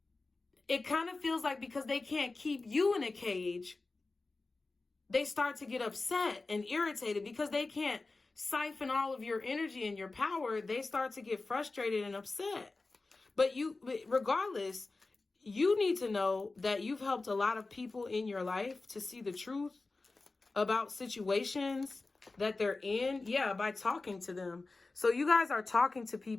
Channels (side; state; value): right; quieter; 3.5 dB